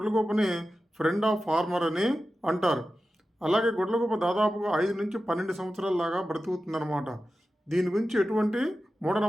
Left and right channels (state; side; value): normal; both; correlation 0.93